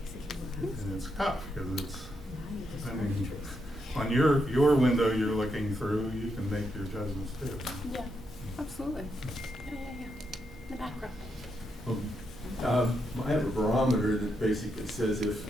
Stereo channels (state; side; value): normal; both; correlation 0.81